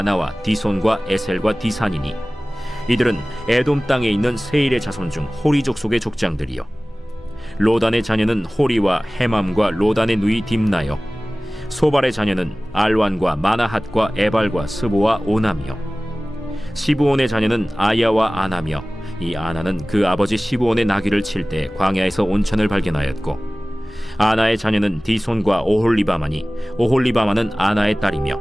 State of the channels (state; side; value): normal; both; correlation 0.98